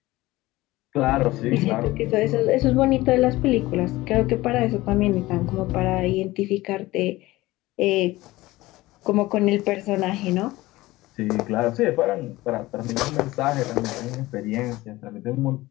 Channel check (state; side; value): quieter; right; 18.7 dB